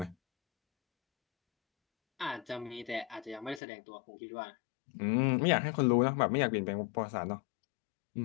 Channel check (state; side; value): drops out; right; at 3.6 s